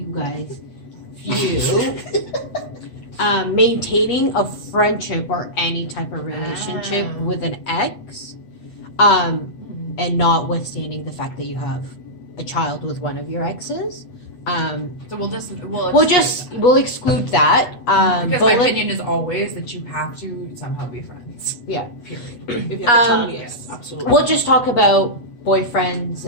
guys view maintaining a friendship or any type of relationship with an ex, and notwithstanding the fact that you have a child with one of your exes. So we'll We'll exclude that. because but my let- opinion is always that you have to somehow be friends. Yeah. Period. If you have a child, Um, yes, absolutely. We'll just talk about boyfriends,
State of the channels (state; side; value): late; right; 8.1 ms